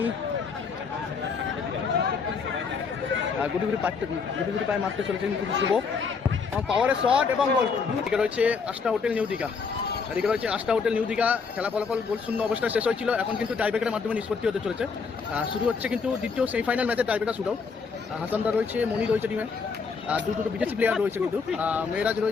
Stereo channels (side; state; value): right; quieter; 5.3 dB